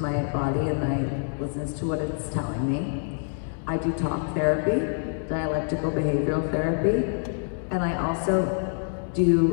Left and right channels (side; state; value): right; silent; digital silence